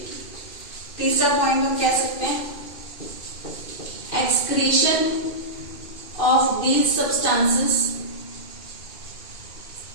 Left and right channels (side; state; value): right; late; 2.5 ms